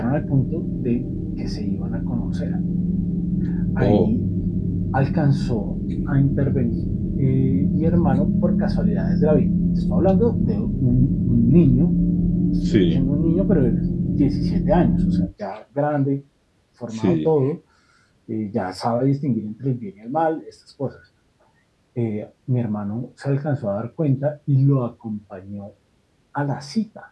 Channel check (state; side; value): identical; both; correlation 1.00